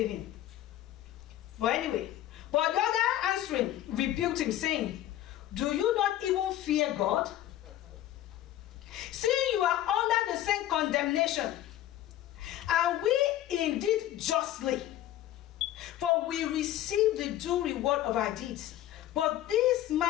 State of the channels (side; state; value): right; quieter; 13.3 dB